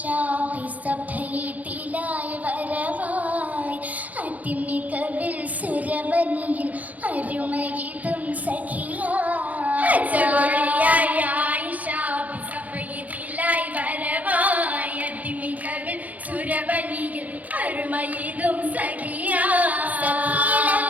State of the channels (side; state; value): left; late; 0.076 ms